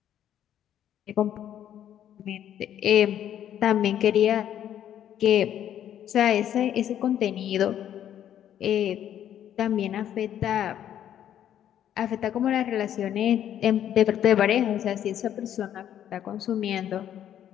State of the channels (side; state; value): right; quieter; 10.5 dB